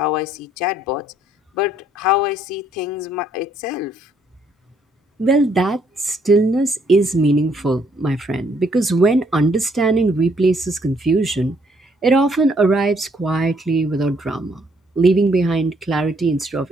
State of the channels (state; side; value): normal; both; correlation 0.68